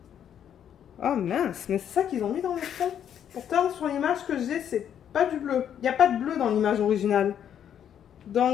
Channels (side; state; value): right; quieter; 9.3 dB